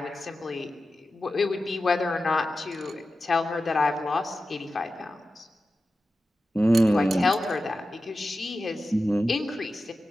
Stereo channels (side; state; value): both; normal; correlation 0.93